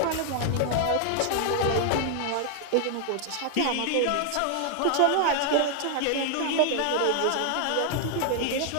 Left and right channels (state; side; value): different; both; correlation 0.00